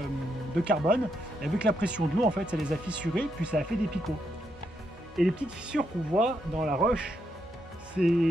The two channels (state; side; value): normal; both; correlation 0.79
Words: carbone et avec la pression de l'eau en fait ça les a fissurés puis ça a fait des picots. Et les petites fissures qu'on voit dans la roche, c'est